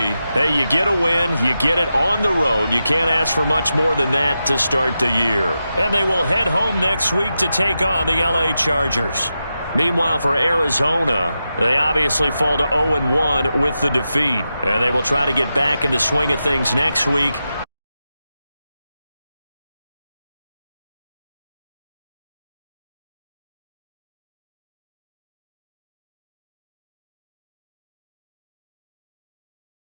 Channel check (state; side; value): inverted; both; correlation -0.90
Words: hey, you get a win, you get it on the road. You can't ask for much more than that to start the year. And they will head home next week to take on the LA Chargers. Meanwhile, for Arizona, they obviously fall to 0-1 with the defeat. And they will try to get back in the swing of things next week.